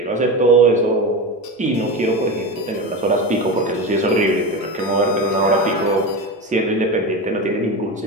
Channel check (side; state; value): both; normal; correlation 0.22